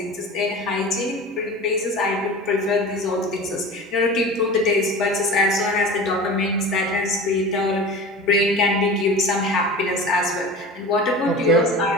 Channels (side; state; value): both; normal; correlation 0.35